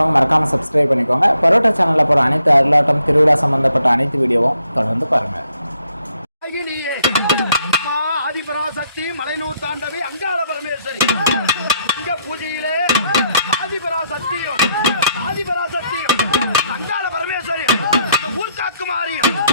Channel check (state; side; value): inverted; both; correlation -0.74